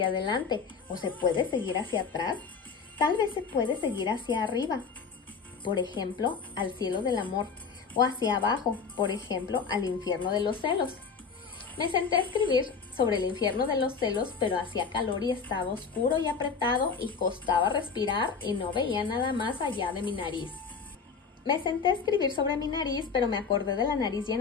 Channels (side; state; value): right; quieter; 5.6 dB